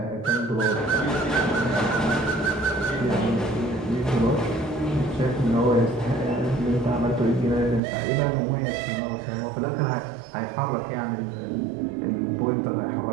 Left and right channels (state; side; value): drops out; left; at 7.8 s